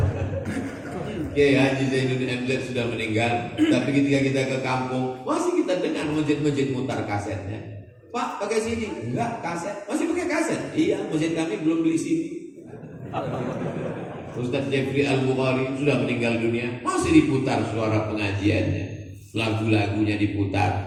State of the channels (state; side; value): identical; both; correlation 1.00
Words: Oke, Haji Zainuddin MZ sudah meninggal. Tapi ketika kita ke kampung, masih kita dengar masjid-masjid mutar kasetnya. Pak, pakai CD? Enggak, kaset. Masih pakai kaset? Iya, masjid kami belum beli CD. Ustadz Jeffrey Al-Bukhari sudah meninggal dunia, masih diputar suara pengajiannya, lagu-lagunya